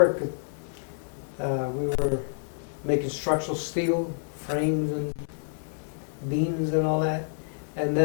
We were making structural steel frames and beams and all that. And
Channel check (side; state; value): right; silent; 59 dB below the other